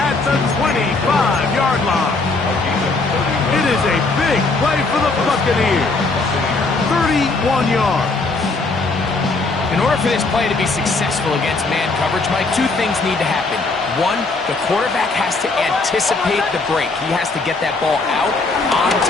the 25-yard line. It is a big play for the Buccaneers. 31 yards. In order for this play to be successful against man coverage, Mike, two things need to happen. One, the quarterback has to anticipate the break. He has to get that ball out on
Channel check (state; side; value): quieter; right; 3.6 dB